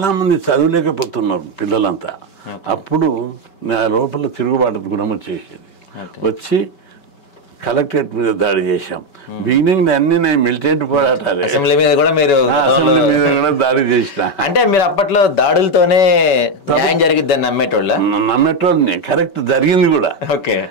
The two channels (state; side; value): late; right; 5.2 ms